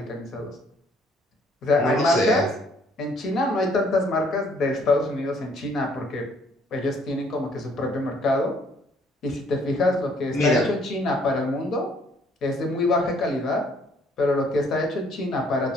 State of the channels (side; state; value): both; normal; correlation 0.63